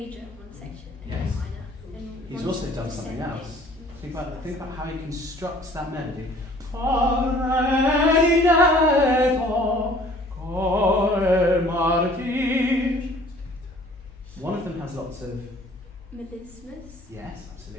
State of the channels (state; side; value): normal; both; correlation 0.53